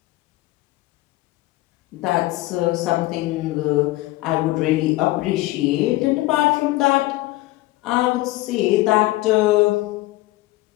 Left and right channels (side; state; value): right; quieter; 18.9 dB